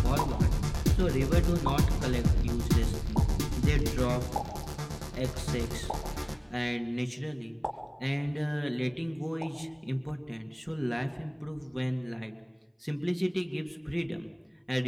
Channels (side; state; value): both; identical; correlation 1.00